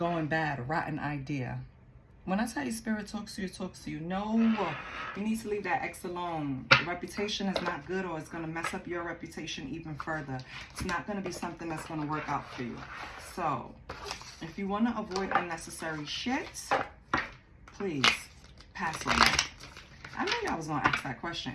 bad, rotten idea. When I tell you spirit talks to you, it talks to you. No, you need to leave that ex alone. The reputation is not good, or it's going to mess up your reputation even further. It's not going to be something that's going to work out for you. So, if you want to avoid unnecessary shit, please pass on that. I knew y'all was going to ask that question,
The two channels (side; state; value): both; identical; correlation 1.00